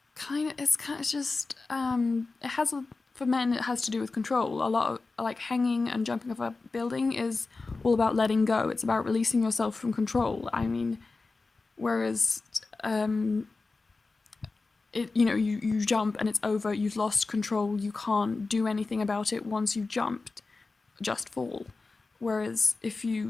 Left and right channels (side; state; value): right; quieter; 3.8 dB